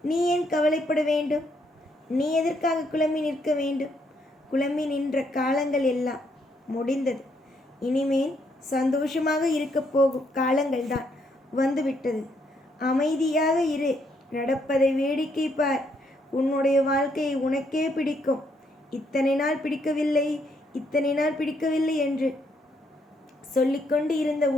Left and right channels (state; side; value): normal; both; correlation 0.73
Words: நீ ஏன் கவலைப்பட வேண்டும்? நீ எதற்காக குழம்பி நிற்க வேண்டும்? குழம்பி நின்ற காலங்கள் எல்லாம் முடிந்தது. இனிமேல் சந்தோஷமாக இருக்க போகும் காலங்கள் தான் வந்துவிட்டது. அமைதியாக இரு. நடப்பதை வேடிக்கை பார். உன்னுடைய வாழ்க்கையை உனக்கே பிடிக்கும். இத்தனை நாள் பிடிக்கவில்லை, இத்தனை நாள் பிடிக்கவில்லை என்று சொல்லிக்கொண்டு இருந்த